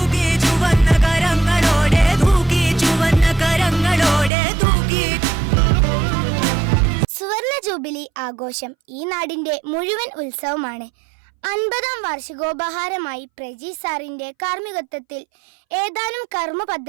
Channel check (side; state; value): left; drops out; at 4.3 s